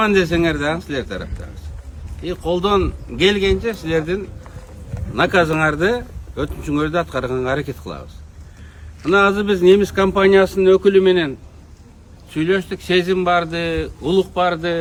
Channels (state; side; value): identical; both; correlation 1.00